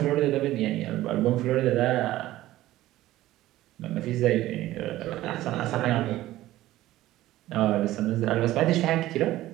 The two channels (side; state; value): left; quieter; 15.5 dB